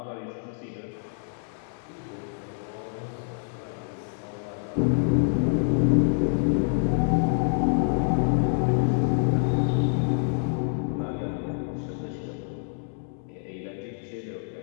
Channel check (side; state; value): right; silent; 60 dB below the other